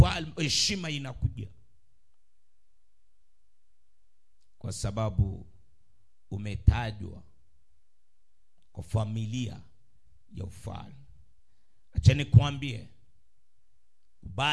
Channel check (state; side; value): identical; both; correlation 1.00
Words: heshima inakuja kwa sababu umetajwa kwa familia ya ufalme. Acha nikwambie,